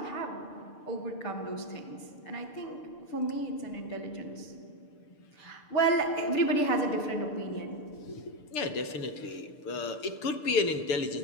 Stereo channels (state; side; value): late; right; 6.7 ms